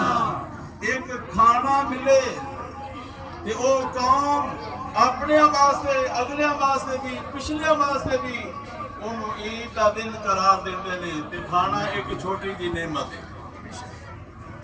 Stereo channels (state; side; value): identical; both; correlation 1.00